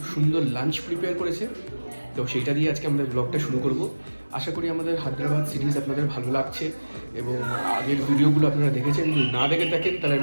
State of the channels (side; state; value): both; inverted; correlation -1.00